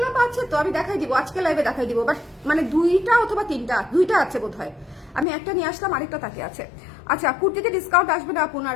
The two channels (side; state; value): right; drops out; at 5.2 s